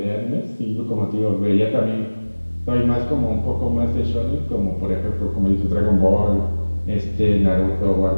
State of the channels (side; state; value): both; inverted; correlation -1.00